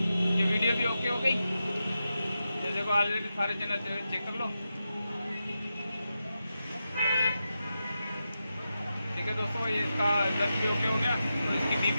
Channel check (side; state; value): both; inverted; correlation -0.89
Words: ये वीडियो भी ओके हो गई। ये देखो, ऑलरेडी सारे चैनल चेक कर लो। ठीक है दोस्तों, ये इसका रिजल्ट भी ओके हो गया और इसकी dB